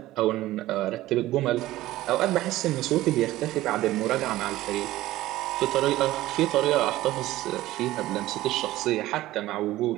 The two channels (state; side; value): quieter; left; 16.1 dB